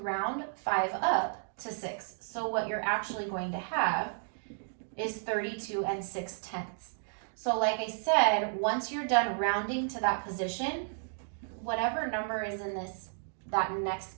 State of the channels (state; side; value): silent; left; digital silence